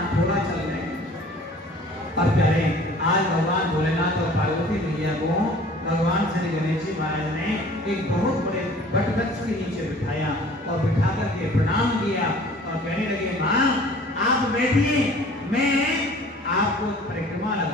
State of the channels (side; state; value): both; normal; correlation 0.49